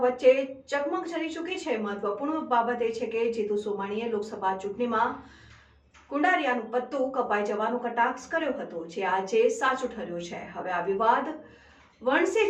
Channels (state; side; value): identical; both; correlation 1.00